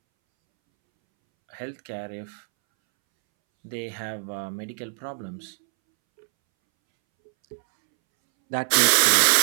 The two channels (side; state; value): left; silent; 62 dB below the other